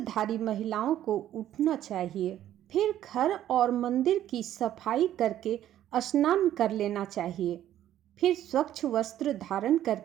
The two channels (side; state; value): left; quieter; 12.0 dB